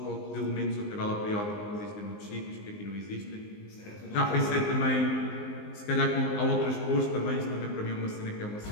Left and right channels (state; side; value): late; right; 19 ms